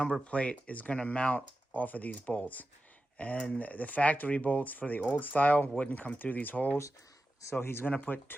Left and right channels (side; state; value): both; normal; correlation 0.92